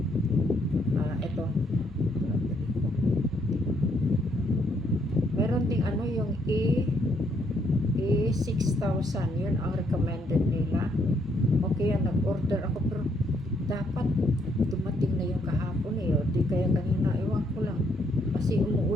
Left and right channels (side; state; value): both; normal; correlation 0.72